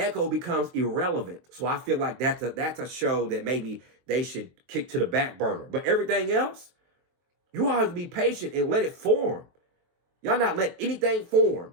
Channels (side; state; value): left; late; 23 ms